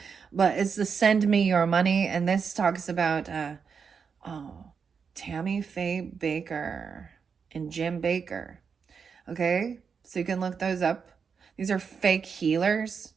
it's the Send Me Your Money. And this talks about, Tammy Faye Baker and Jim Baker. Okay? So you can look those up. These are fake healers.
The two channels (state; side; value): quieter; left; 6.1 dB